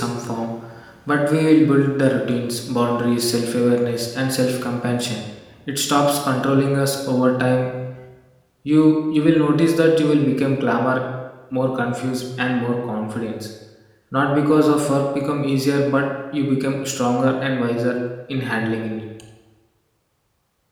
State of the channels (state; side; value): identical; both; correlation 1.00